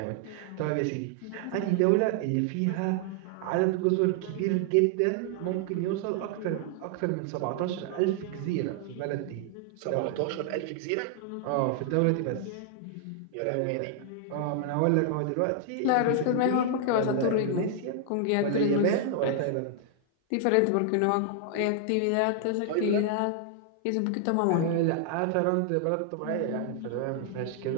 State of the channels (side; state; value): both; different; correlation 0.00